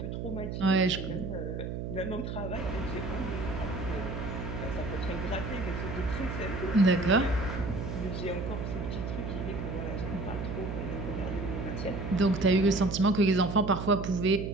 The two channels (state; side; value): noise; right; hum, 5 dB below the sound